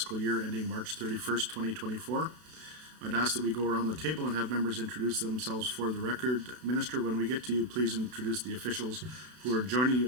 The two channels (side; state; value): left; late; 32 ms